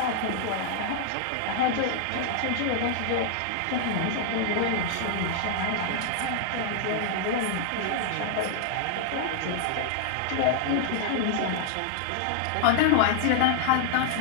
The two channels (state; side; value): different; both; correlation 0.00